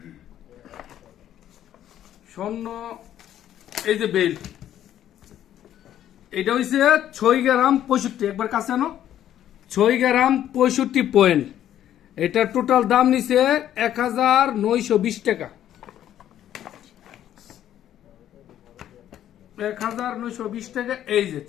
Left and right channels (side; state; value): right; quieter; 11.4 dB